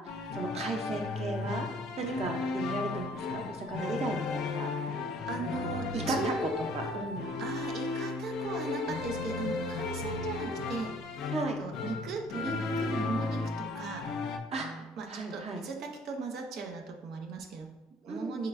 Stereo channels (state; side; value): normal; both; correlation 0.56